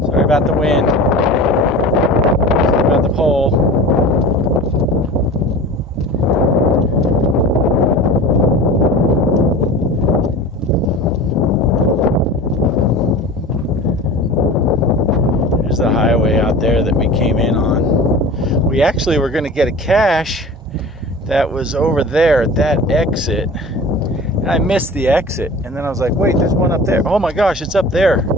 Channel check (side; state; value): both; normal; correlation 0.37